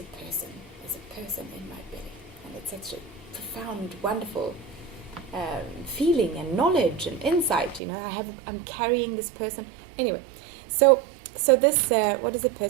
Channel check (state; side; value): drops out; left; at 7.8 s